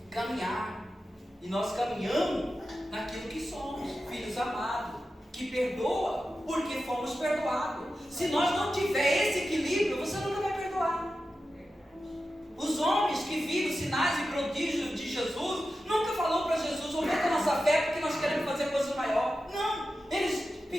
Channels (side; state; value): both; normal; correlation 0.92